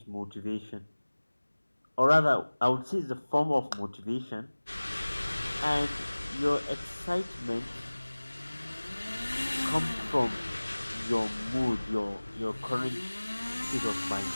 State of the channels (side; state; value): both; inverted; correlation -1.00